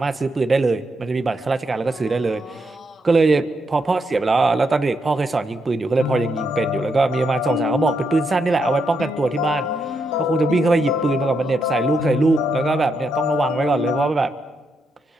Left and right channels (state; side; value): normal; both; correlation 0.80